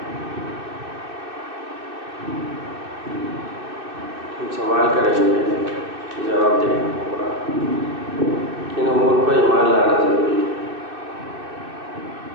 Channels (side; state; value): left; late; 2.6 ms